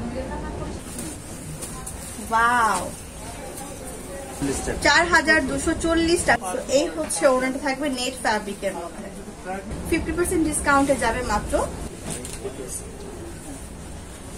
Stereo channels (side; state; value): both; identical; correlation 1.00